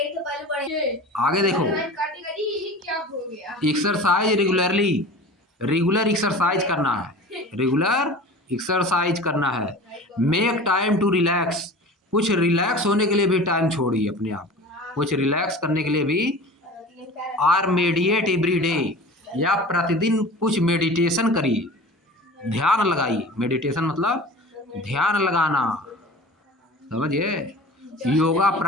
आगे देखो, एक्सरसाइज रेगुलरली, रेगुलर एक्सरसाइज करना है, रेगुलर एक्सरसाइज करना है। मेक टाइम टू रिलैक्स, कुछ रिलैक्स होने के लिए भी टाइम छोड़िए अपने आप, कुछ रिलैक्स करने के लिए भी। आर मेडिटेट एवरी डे, या प्रतिदिन कुछ मेडिटेशन करिए, ध्यान लगाइए। मेडिटेशन मतलब ध्यान लगाना, समझिए। योगा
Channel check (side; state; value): both; normal; correlation 0.38